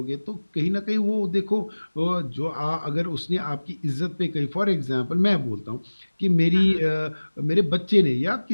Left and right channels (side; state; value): both; inverted; correlation -1.00